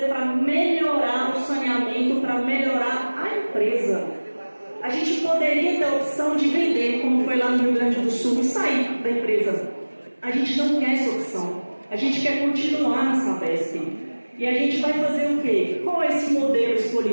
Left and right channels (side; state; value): both; inverted; correlation -1.00